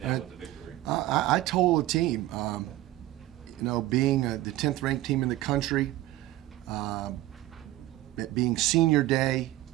now with the victory? I told the team, being the 10th ranked team in the country, it being senior day,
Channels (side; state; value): left; quieter; 16.0 dB